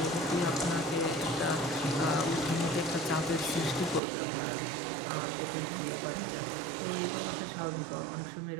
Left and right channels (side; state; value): left; drops out; at 4.0 s